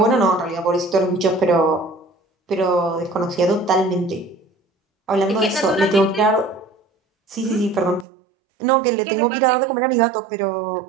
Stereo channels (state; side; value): drops out; left; at 8.1 s